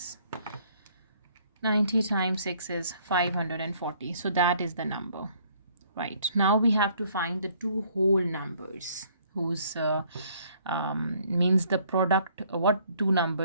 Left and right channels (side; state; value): both; inverted; correlation -0.62